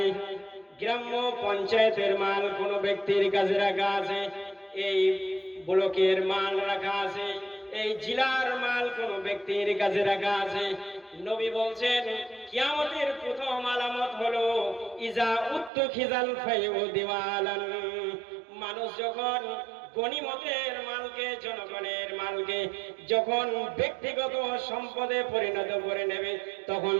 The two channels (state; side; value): drops out; left; at 15.7 s